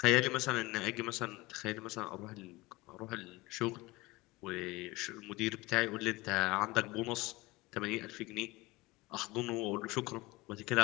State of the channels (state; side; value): quieter; right; 21.6 dB